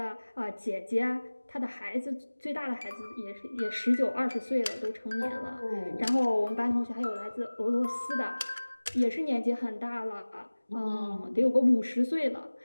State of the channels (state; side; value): inverted; both; correlation -1.00